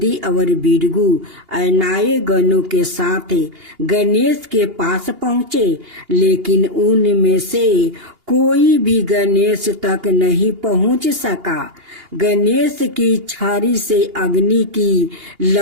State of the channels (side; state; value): left; late; 2.8 ms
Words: और बिरगू अनाए गणों के साथ गणेश के पास पहुँचे, लेकिन उनमें से कोई भी गणेश तक नहीं पहुंच सका। गणेश की छड़ी से अग्नि की